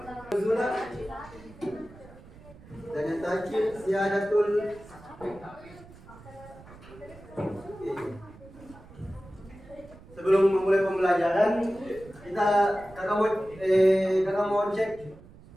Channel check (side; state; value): right; noise; rumble, 21 dB below the sound